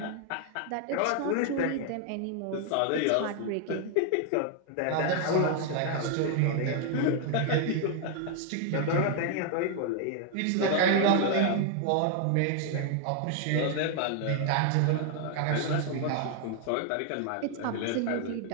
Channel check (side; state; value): both; different; correlation 0.00